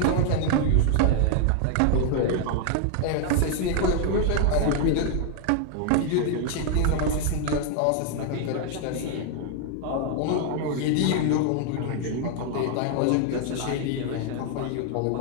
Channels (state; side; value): different; both; correlation 0.00